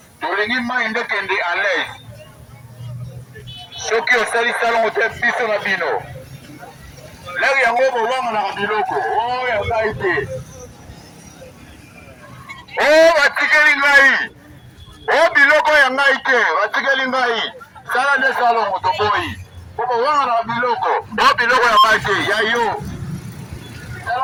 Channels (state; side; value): identical; both; correlation 1.00